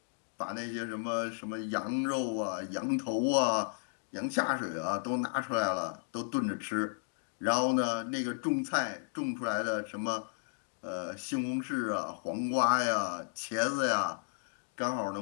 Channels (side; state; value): right; silent; digital silence